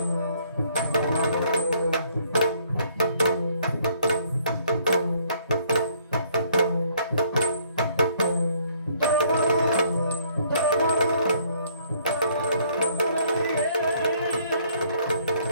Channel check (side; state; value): both; inverted; correlation -0.64